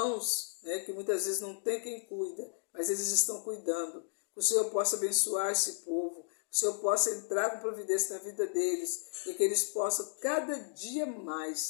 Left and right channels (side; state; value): right; silent; digital silence